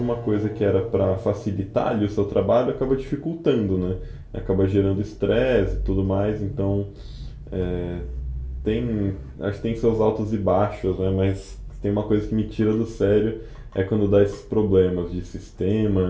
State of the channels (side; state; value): both; identical; correlation 1.00